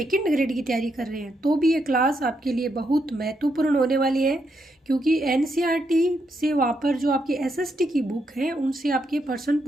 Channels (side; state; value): both; normal; correlation 0.80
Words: ग्रेड की तैयारी कर रहे हैं तो भी ये क्लास आपके लिए बहुत महत्वपूर्ण होने वाली है, क्योंकि एनसीईआरटी से वहाँ पर जो आपकी एसएसटी की बुक है उनसे आपके प्रश्न